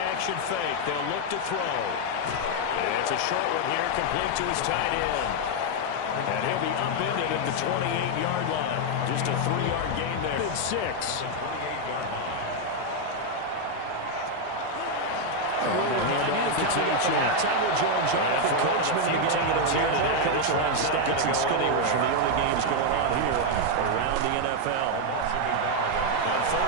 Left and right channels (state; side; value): different; both; correlation 0.01